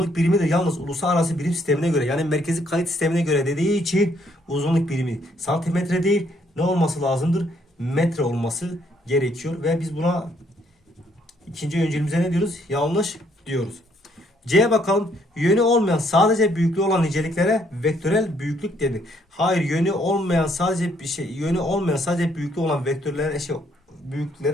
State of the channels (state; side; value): normal; both; correlation 0.69